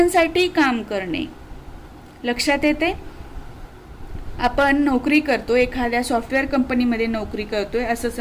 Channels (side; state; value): both; identical; correlation 1.00